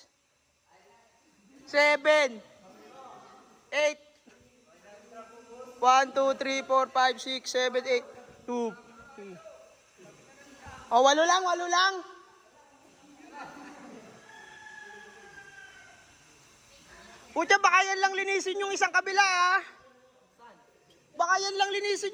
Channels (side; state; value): both; identical; correlation 1.00